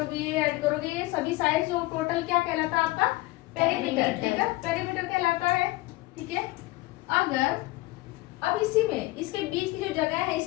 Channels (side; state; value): right; quieter; 20.0 dB